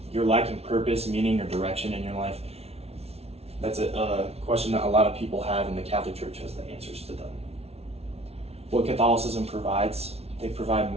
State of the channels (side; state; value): left; late; 0.30 ms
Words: You're lacking purpose, meaning, or direction in your life? That's a question that a lot of people have, and the Catholic Church has the answers to them. What Catholicism provides, they provide